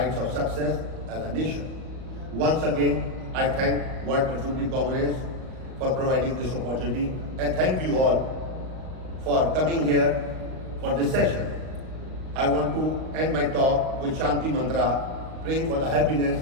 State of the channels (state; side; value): late; left; 38 ms